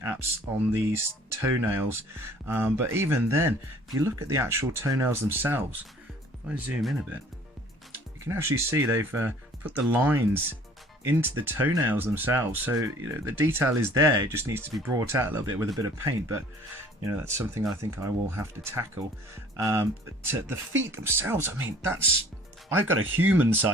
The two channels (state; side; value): normal; both; correlation 0.53